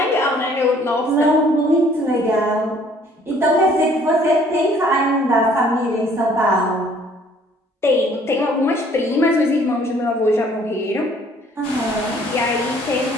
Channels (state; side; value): normal; both; correlation 0.58